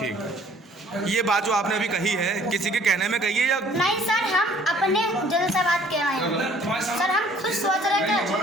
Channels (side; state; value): both; normal; correlation 0.56